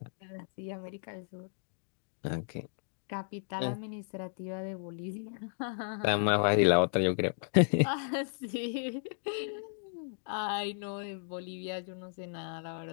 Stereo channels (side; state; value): right; silent; digital silence